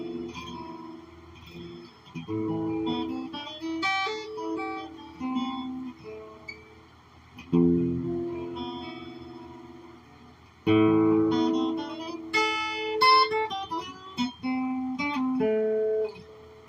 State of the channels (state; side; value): identical; both; correlation 1.00